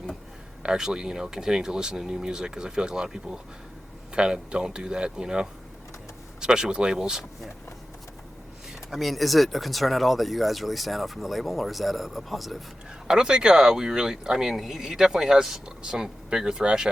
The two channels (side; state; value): both; normal; correlation 0.93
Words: actually, you know, continuing to listen to new music, because I feel like a lot of people kind of don't do that, you know, especially with labels. Yeah. I mean, is it a concern at all that you guys really stand out from the label, or is that a positive? I don't think we really... I mean, he definitely has some bigger thrash